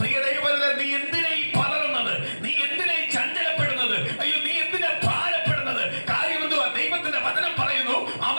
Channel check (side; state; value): both; inverted; correlation -1.00